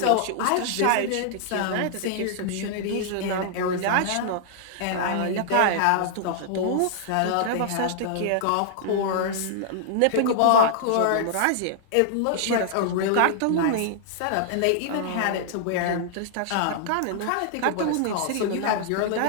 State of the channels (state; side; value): different; both; correlation -0.01